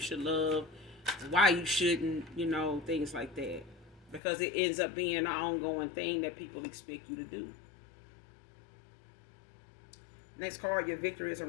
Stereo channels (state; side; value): drops out; right; at 4.2 s